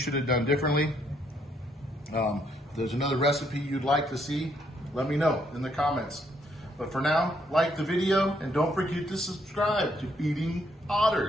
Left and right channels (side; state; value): both; normal; correlation 0.72